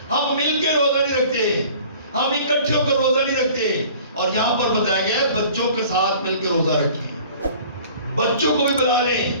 ہم مل کے روزہ نہیں رکھتے، ہم اکٹھے ہو کر روزہ نہیں رکھتے۔ اور یہاں پر بتایا گیا ہے بچوں کے ساتھ مل کے روزہ رکھیں، بچوں کو بھی بلا لیں،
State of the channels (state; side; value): inverted; both; correlation -0.48